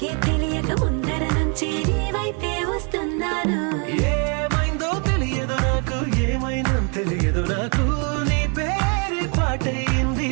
తెలియక ముందర నుంచి నీ వైపే వస్తున్నాను ఏమైందో తెలియదు నాకు ఏమైందో తెలియదు నాకు నీ పేరు పాటయింది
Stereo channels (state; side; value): quieter; left; 37.1 dB